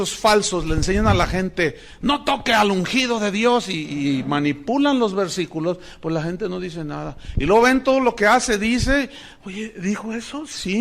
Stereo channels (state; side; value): identical; both; correlation 1.00